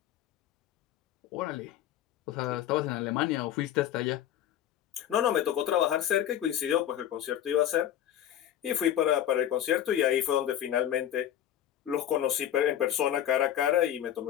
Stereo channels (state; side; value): quieter; right; 11.1 dB